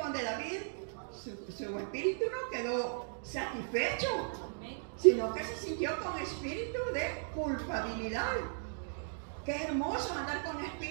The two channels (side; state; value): left; silent; digital silence